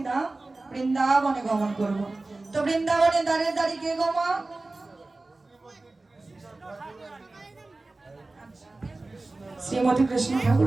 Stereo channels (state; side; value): quieter; left; 3.2 dB